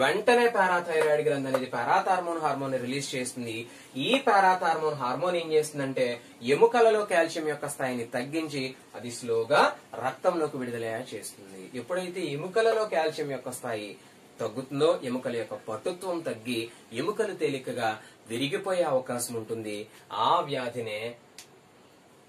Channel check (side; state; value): both; identical; correlation 1.00